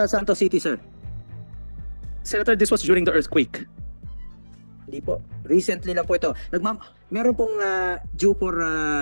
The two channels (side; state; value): both; inverted; correlation -1.00